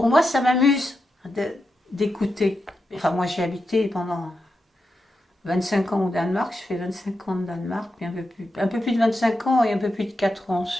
moi, ça m'amuse d'écouter. Enfin, moi, j'ai habité pendant 25 ans au Danemark, je fais 25 ans au Danemark, puis un peu plus de 25 ans et un peu plus de 4 ans en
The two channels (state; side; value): normal; both; correlation 0.88